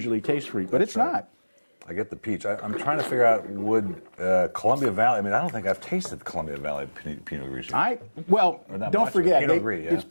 taste sweet, but it's not. I get the peach. I'm trying to figure out would Columbia Valley. I mean, I don't think I've tasted Columbia Valley Pinot Grigio. Don't forget, Pinot Gris, yeah. It's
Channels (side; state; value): both; inverted; correlation -1.00